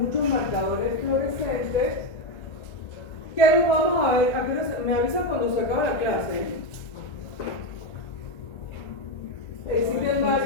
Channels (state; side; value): late; right; 1.9 ms